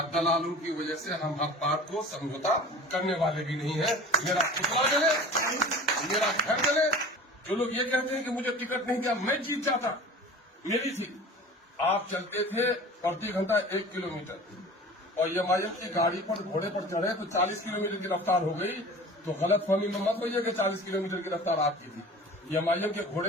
دلالوں کی وجہ سے ہم حق بات کو سمجھوتا کرنے والے بھی نہیں ہیں. میرا پتلا جلے، میرا گھر جلے. جو لوگ یہ کہتے ہیں کہ مجھے ٹکٹ نہیں دیا، میں جیت جاتا، میری تھی. آپ چلتے تھے پرتی گھنٹہ 1 کلومیٹر اور ایم آئی ایم کی گاڑی پر گھوڑے پر چڑھے تو 40 کلومیٹر کی رفتار ہو گئی. تو غلط فہمی میں مت ہوئی ہے کہ 40 کلومیٹر کی رفتار آپ کی تھی. ایم آئی ایم کے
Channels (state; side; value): normal; both; correlation 0.40